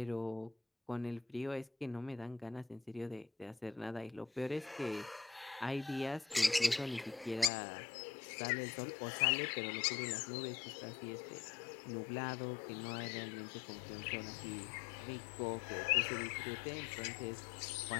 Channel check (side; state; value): right; drops out; at 7.5 s